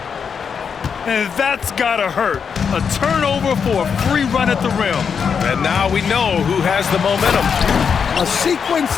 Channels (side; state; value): right; quieter; 6.5 dB